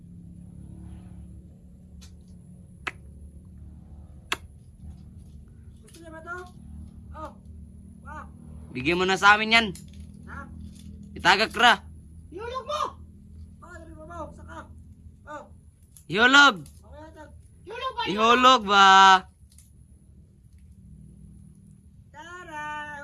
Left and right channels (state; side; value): identical; both; correlation 1.00